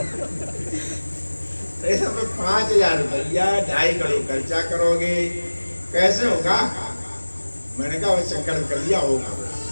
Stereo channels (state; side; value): inverted; both; correlation -1.00